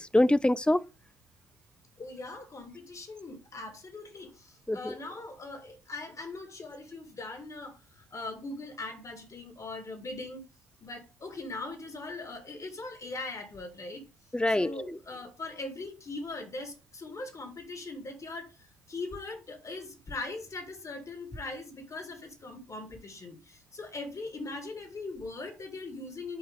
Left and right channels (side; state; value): both; normal; correlation 0.86